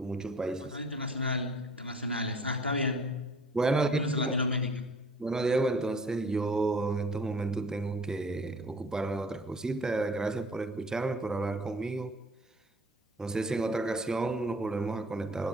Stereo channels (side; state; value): both; normal; correlation 0.52